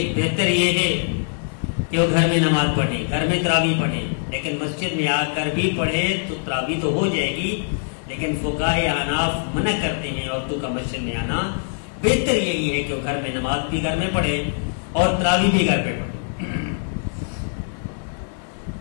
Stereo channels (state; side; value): silent; right; digital silence